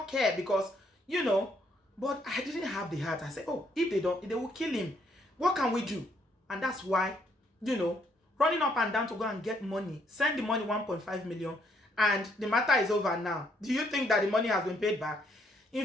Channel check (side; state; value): both; normal; correlation 0.70